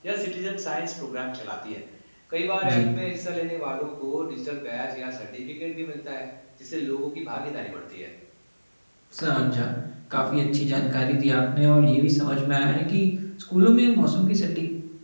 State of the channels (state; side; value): inverted; both; correlation -1.00